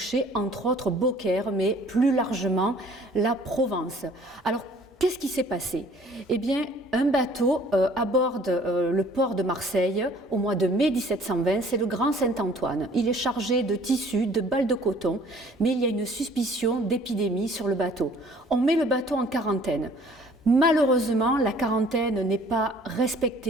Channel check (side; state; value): both; normal; correlation 0.55